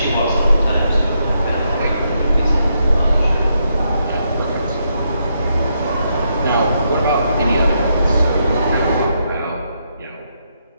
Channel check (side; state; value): both; inverted; correlation -0.79